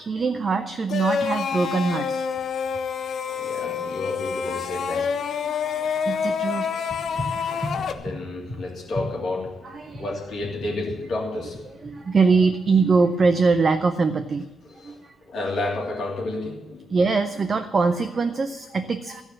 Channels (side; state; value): both; normal; correlation 0.81